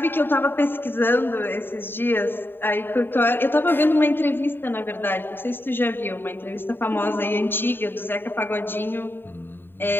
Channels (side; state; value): right; late; 0.099 ms